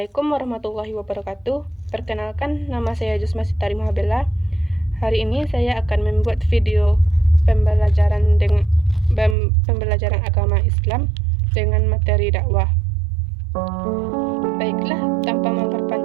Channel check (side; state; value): left; drops out; at 9.3 s